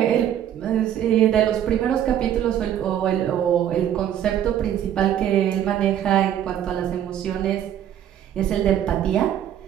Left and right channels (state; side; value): quieter; left; 10.6 dB